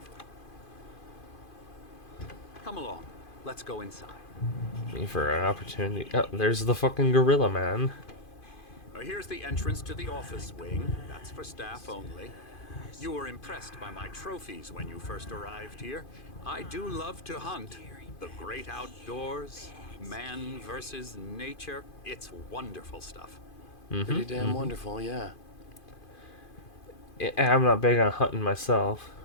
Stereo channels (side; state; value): right; late; 2.5 ms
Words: Come along. Let's go inside. Me for an opportunity. Oh, there's the fucking gorilla man. Here's the entrance to the office wing. That's for staff only. You were impressed by my trophies when you first arrived here. I do love to hunt. The great outdoors, man versus nature. It's wonderful stuff. Pretty damn wonderful, yeah. I'm not big on hunting myself.